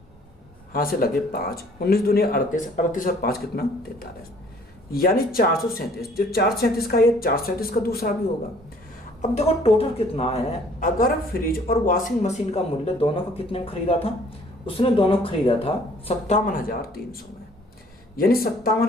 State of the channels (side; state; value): both; normal; correlation 0.57